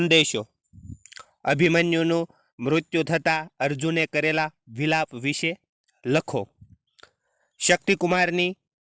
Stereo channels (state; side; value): identical; both; correlation 1.00